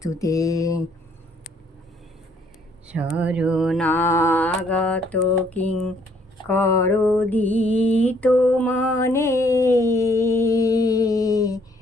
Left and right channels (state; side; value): normal; both; correlation 0.65